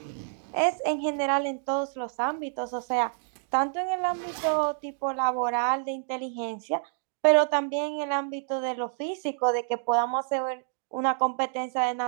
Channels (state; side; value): silent; left; digital silence